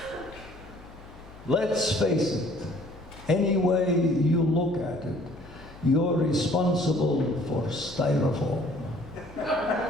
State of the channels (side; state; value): left; noise; hum, 20 dB below the sound